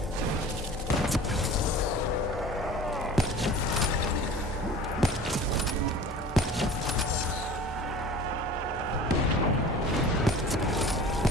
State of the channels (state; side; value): normal; both; correlation 0.41